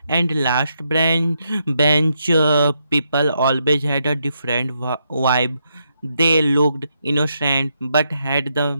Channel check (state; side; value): inverted; both; correlation -0.80